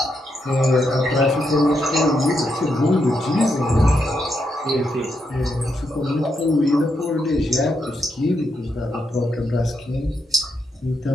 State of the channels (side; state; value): both; normal; correlation 0.81